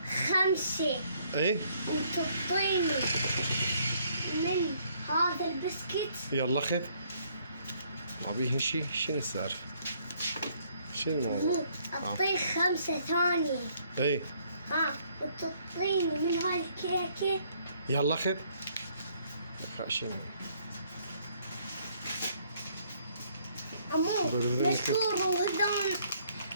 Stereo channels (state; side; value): inverted; both; correlation -0.66